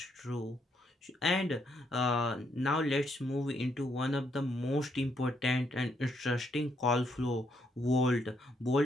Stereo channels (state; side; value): normal; both; correlation 0.74